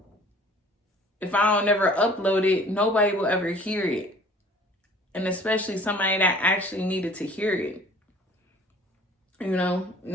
If I don't ever upload it, nobody will ever hear it. And especially somebody that actually needed to hear it. You know,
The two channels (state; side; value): normal; both; correlation 0.50